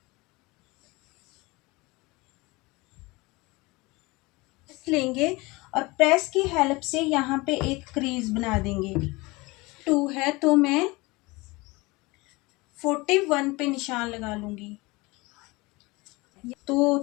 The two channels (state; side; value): quieter; right; 23.4 dB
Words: लेंगे और प्रेस की हेल्प से यहाँ पे एक क्रीज बना देंगे। 2 है तो मैं 41 पे निशान लगा लूंगी। तो